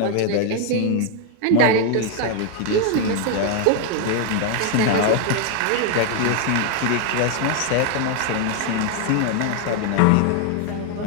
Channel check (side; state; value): both; different; correlation 0.00